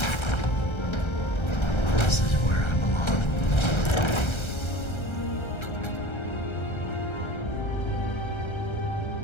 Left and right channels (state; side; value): late; right; 1.3 ms